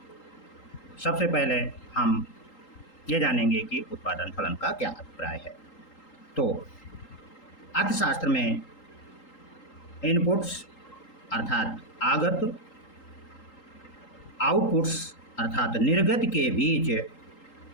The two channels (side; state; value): right; late; 3.8 ms